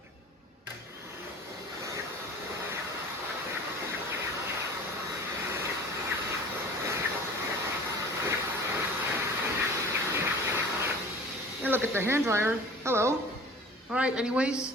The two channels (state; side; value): normal; both; correlation 0.43